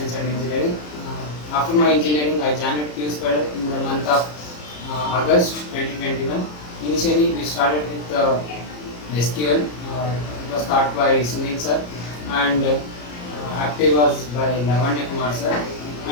and engineering. After my engineering, I joined Qspiders in the month of August 2021. Initially, we started with SQL. It was taught by Sunil sir, and active was by Lavanya Kumar sir.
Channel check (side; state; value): right; late; 33 ms